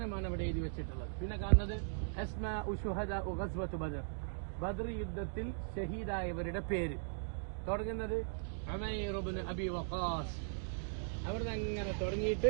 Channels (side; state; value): left; silent; digital silence